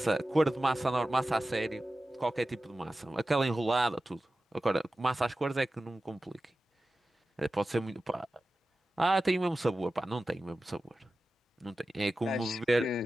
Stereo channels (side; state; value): both; normal; correlation 0.94